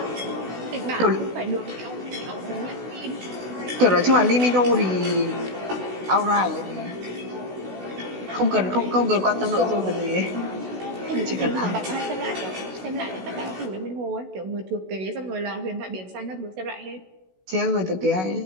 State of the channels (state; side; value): late; left; 16 ms